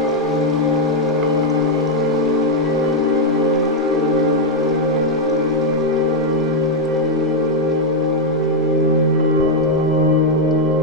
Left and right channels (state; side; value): normal; both; correlation 0.00